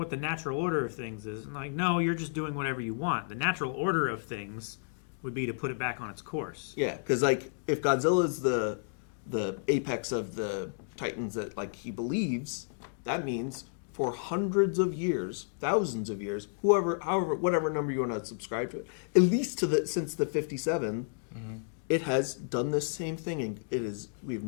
the natural order of things is. And like, no, you're just doing whatever you want. The natural order of things would be to put it back on its course. Yeah, because like if Godzilla's the apex of the Titans that like he believes, that means for hundreds of years, thousands of years, whatever number you want to subscribe to it, at least since the 57, it has done this same thing, and we've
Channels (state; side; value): silent; right; digital silence